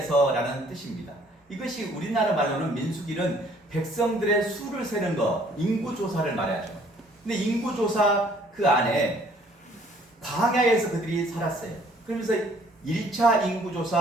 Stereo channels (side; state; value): both; normal; correlation 0.60